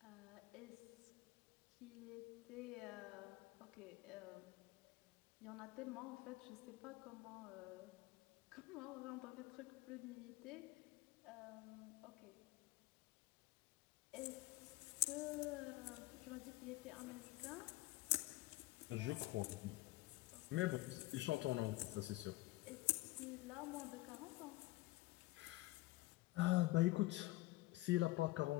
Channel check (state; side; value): quieter; right; 19.7 dB